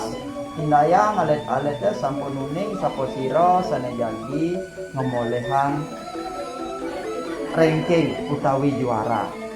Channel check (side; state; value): both; identical; correlation 1.00